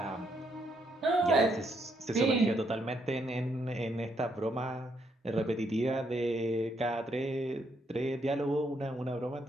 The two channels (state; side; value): normal; both; correlation 0.75